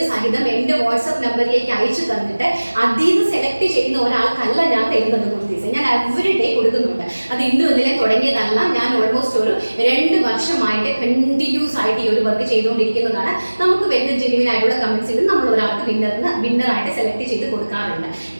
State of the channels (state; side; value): inverted; both; correlation -1.00